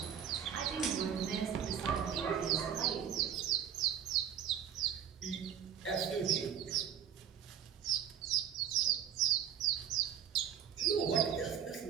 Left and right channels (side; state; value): left; quieter; 8.9 dB